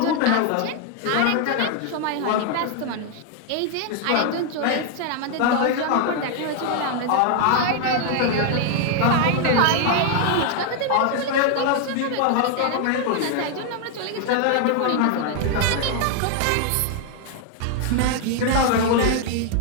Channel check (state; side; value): different; both; correlation 0.00